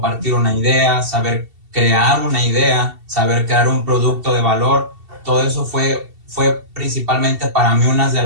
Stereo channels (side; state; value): left; late; 2.7 ms